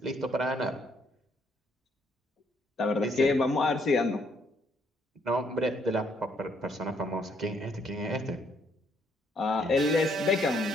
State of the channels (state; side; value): normal; both; correlation 0.69